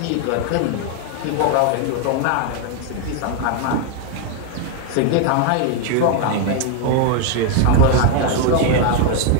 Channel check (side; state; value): both; different; correlation 0.01